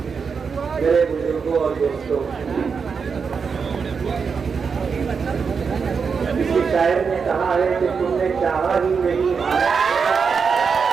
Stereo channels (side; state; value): left; quieter; 5.7 dB